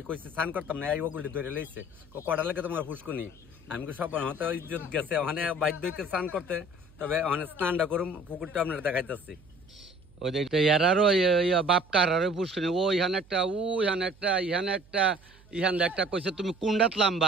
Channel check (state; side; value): noise; right; hum, 26 dB below the sound